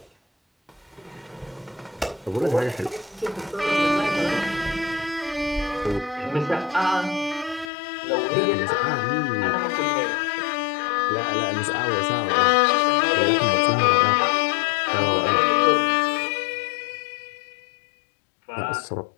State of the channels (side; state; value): right; drops out; at 7.7 s